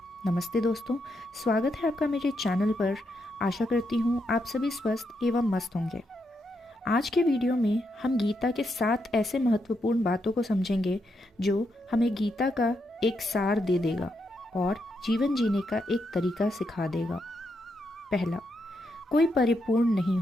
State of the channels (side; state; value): both; normal; correlation 0.81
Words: नमस्ते दोस्तों, स्वागत है आपका मेरे चैनल पर। आशा करती हूँ आप सभी स्वस्थ एवं मस्त होंगे। आज के वीडियो में हम गीता के 7 ऐसे महत्वपूर्ण बातों को समझेंगे जो हमें गीता का एक सार दे देगा और जीवन जीने का एक तरीका सिखा देगा। पहला, कोई परिपूर्ण नहीं